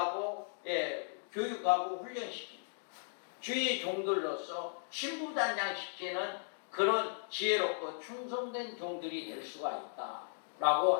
교육하고 훈련시키는 주의 종들로서 신부단장시키는 그런 지혜롭고 충성된 종들이 될 수가 있다라고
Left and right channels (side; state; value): right; silent; digital silence